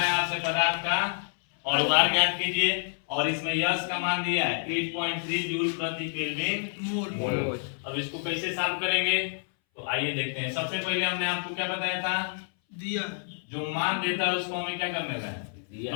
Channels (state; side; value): silent; right; 59 dB below the other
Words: आपसे पदार्थ का और भार ज्ञात कीजिए और इसमें यश का मान दिया है 8.3 जूल प्रति केल्विन मोल। अब इसको कैसे सॉल्व करेंगे तो आइए देखते हैं। सबसे पहले हमने आपको क्या बताया था, दिया जो मान देता है उसको हमें क्या करने का है,